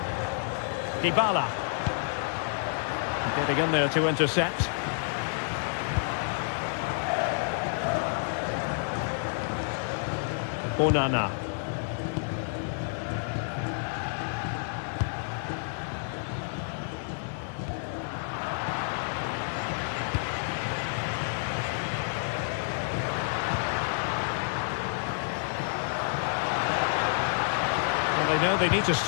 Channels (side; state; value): right; silent; 56 dB below the other